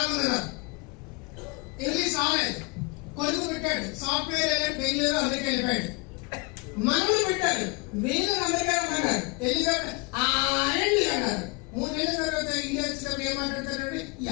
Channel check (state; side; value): quieter; right; 28.2 dB